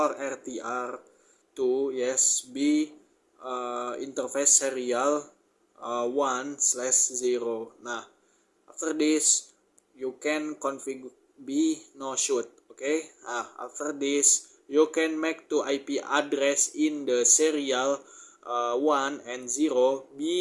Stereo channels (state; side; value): identical; both; correlation 1.00